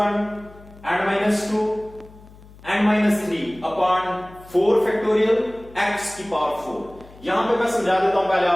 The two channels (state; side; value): noise; left; hum, 22 dB below the sound